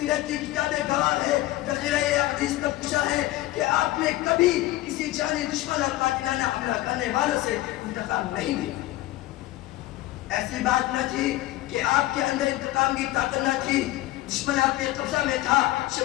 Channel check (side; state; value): right; quieter; 16.6 dB